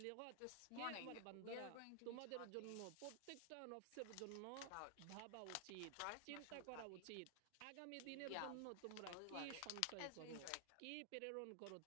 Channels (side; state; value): both; different; correlation 0.00